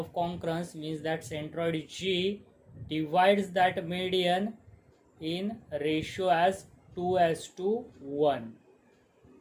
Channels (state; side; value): identical; both; correlation 1.00